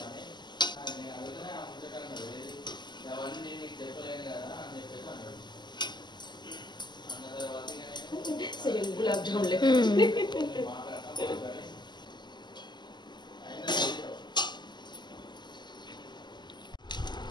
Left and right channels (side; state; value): right; late; 0.21 ms